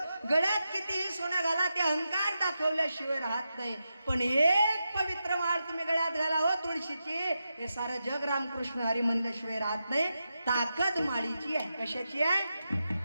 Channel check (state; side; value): inverted; both; correlation -0.88